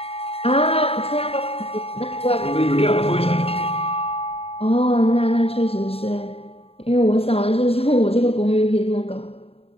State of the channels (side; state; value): right; late; 0.28 ms